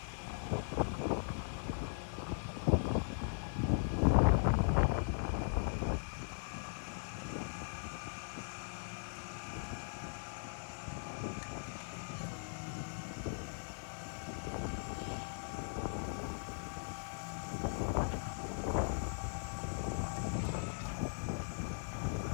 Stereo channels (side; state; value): right; silent; digital silence